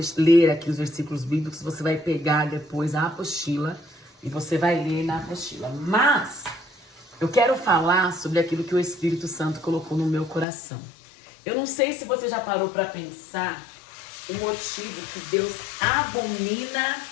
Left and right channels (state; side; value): drops out; right; at 10.5 s